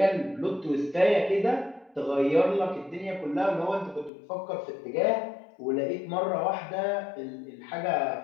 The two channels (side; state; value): right; drops out; at 4.1 s